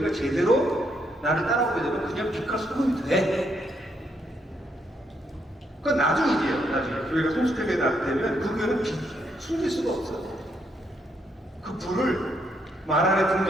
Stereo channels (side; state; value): both; normal; correlation 0.75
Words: 제대로 나를 따라오게 되면 그냥 빛과 소금이 돼. 그건 나중 일이에요. 나중에 교회가 성숙하게 되면 그 교회는 빛 숨길 수가 없어요. 그 불을 말 안에